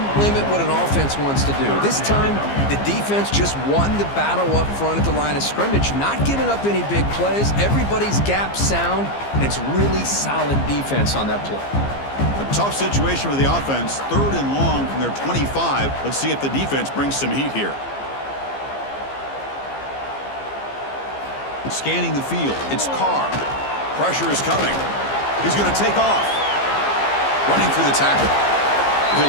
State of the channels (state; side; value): late; right; 15 ms